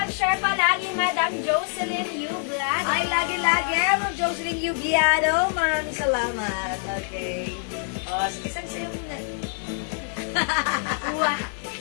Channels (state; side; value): silent; right; 62 dB below the other